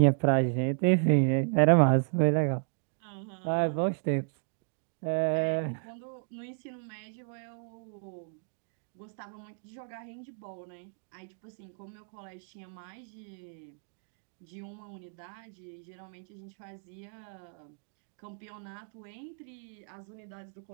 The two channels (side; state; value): left; silent; 56 dB below the other